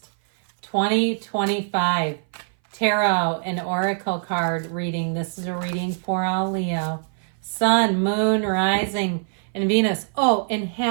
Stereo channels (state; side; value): silent; left; 59 dB below the other